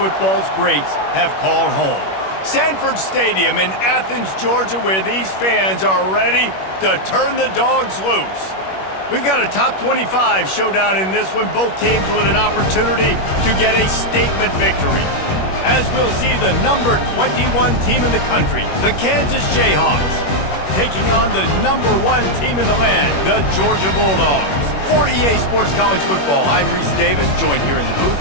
greats have called home. Sanford Stadium in Athens, Georgia, where these fans are ready to turn the dogs loose. We've got a top 25 showdown in this one, both teams with an opportunity to get a statement victory. As we'll see the number 21 team in the country, the Kansas Jayhawks, taking on the number 1 team in the land, the Georgia Bulldogs. For EA Sports College Football, I'm Reese Davis, joined here in the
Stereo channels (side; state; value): right; late; 21 ms